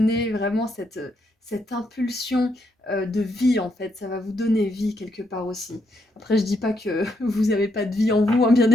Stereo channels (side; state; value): both; normal; correlation 0.77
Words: vraiment cette impulsion de vie en fait, ça va vous donner vie quelque part aussi. Après je dis pas que vous n'avez pas de vie en vous, hein, bien